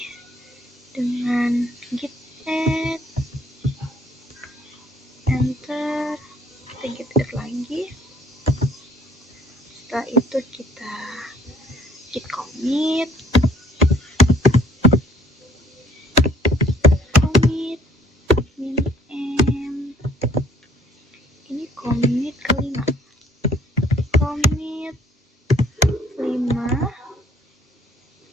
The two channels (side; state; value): both; normal; correlation 0.59